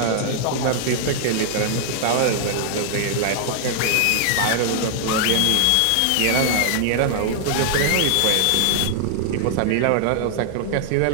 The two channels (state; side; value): different; both; correlation 0.00